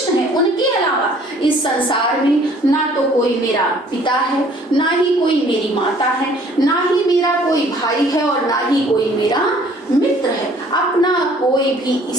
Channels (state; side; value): normal; both; correlation 0.56